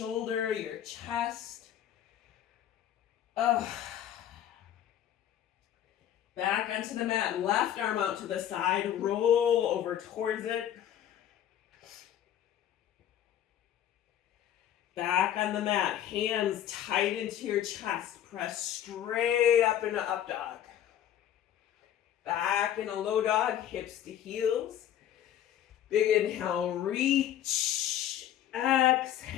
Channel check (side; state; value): right; quieter; 10.9 dB